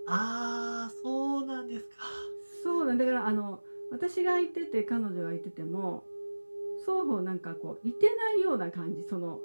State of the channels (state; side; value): inverted; both; correlation -1.00